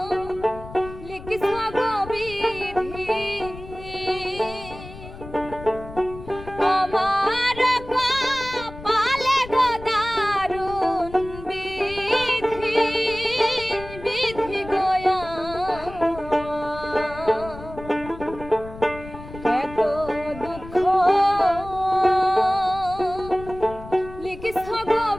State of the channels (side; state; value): left; noise; rumble, 15 dB below the sound